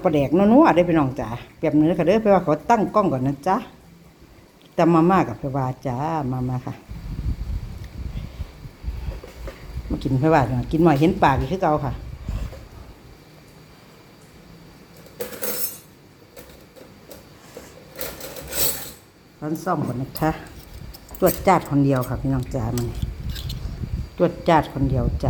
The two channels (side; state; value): both; identical; correlation 1.00